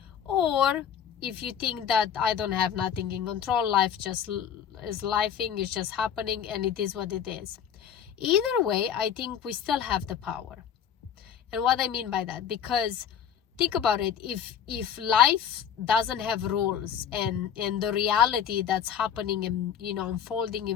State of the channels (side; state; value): right; quieter; 8.6 dB